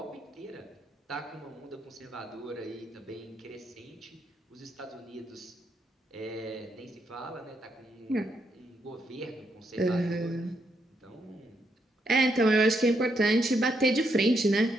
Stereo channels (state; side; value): normal; both; correlation 0.78